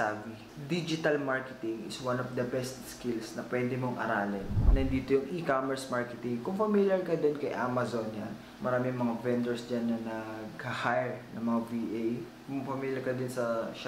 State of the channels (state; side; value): identical; both; correlation 1.00